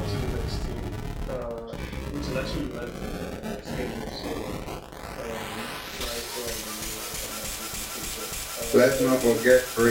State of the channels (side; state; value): both; identical; correlation 1.00